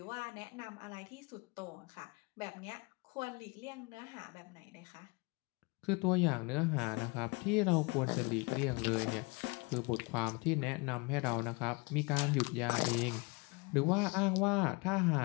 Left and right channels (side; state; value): right; quieter; 28.3 dB